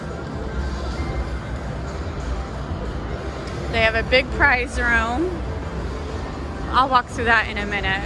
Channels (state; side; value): identical; both; correlation 1.00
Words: They have a big prize room. I'll walk through that in a minute.